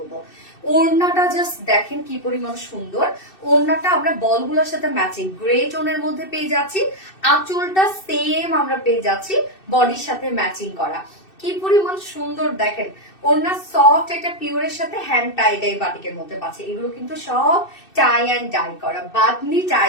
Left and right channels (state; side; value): late; right; 2.6 ms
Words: ওড়নাটা জাস্ট দেখেন কি পরিমাণ সুন্দর। ওড়নাটা আমরা বলগুলোর সাথে ম্যাচিং গ্রে টোনের মধ্যে পেয়ে যাচ্ছি। আঁচলটা সেম আমরা পেয়ে যাচ্ছি বডির সাথে ম্যাচিং করা। কি পরিমাণ সুন্দর দেখেন। ওড়না সফট একটা পিওরের সাথে হ্যান্ড টাই ডাই বাটিকের মধ্যে পাচ্ছে। এগুলো কিন্তু সব টাই অ্যান্ড ডাই করা, বাদনি